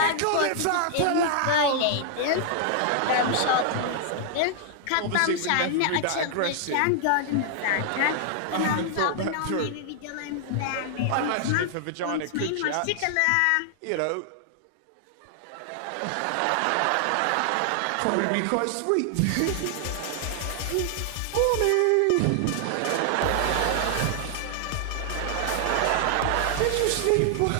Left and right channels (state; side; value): different; both; correlation 0.00